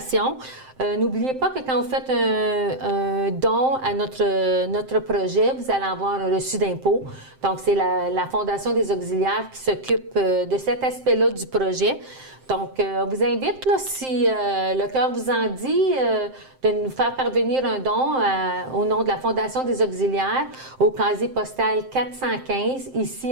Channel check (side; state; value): left; late; 7.7 ms